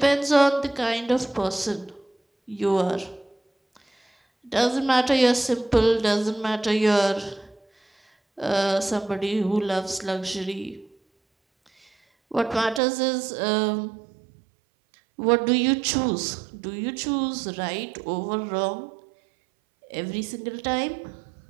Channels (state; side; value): drops out; left; at 12.8 s